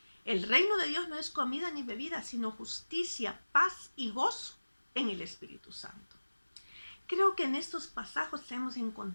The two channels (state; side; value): inverted; both; correlation -1.00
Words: El reino de Dios no es comida ni bebida, sino justicia, paz y gozo en el Espíritu Santo. Creo que en estos pasajes hemos